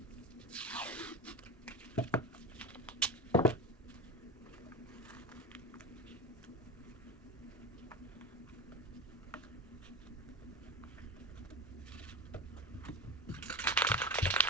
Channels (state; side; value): normal; both; correlation 0.24